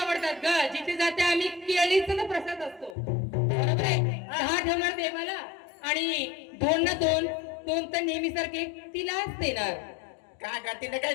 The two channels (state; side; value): drops out; right; at 3.0 s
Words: ग. जिथे जाते आम्ही केळीचा प्रसाद असतो. बरोबर आहे. 10 ठेवणार देवाला आणि 2 ना 2 तर नेहमी सारखे तिलाच देणार. काय ग? तिने काय